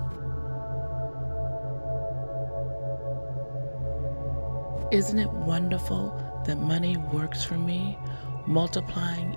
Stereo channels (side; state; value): both; inverted; correlation -1.00